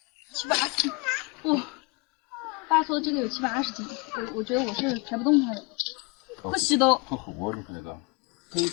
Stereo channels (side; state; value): right; quieter; 28.7 dB